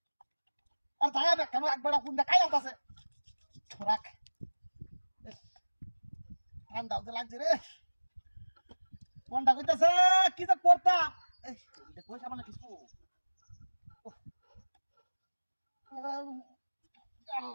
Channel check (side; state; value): both; inverted; correlation -1.00